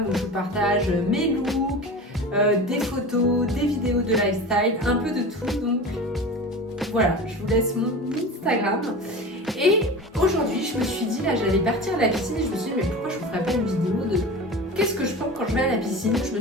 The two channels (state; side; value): normal; both; correlation 0.32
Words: où je vous partage mes looks, des photos, des vidéos de lifestyle, un peu de tout. Donc voilà, je vous laisse mon Instagram. Et aujourd'hui je me suis dit là j'allais partir à la piscine et je me suis dit mais pourquoi je vous ferais pas une vidéo de qu'est-ce que je prends quand je vais à la piscine. Je